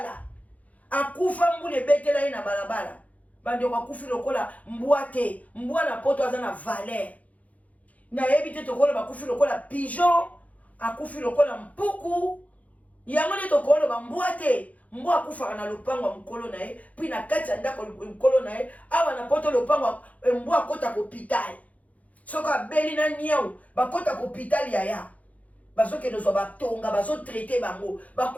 akufa mbule betela ye na balabala bande kwa kufi lokola mbwate mbwa na poto aza na valeur na yebi te tokola bakufi lokola pigeon akufi lokola mpuku yango ne tokola ba mbwate mbwa akufaka na lopango mkolo na ye puis na kati ya ndako mkolo na ye awa na poto lopango mbwa akota ko hopital soka beli na niau bakota ko hopital ya bazoke dozwa batonga bazo traiter bango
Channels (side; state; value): right; late; 0.070 ms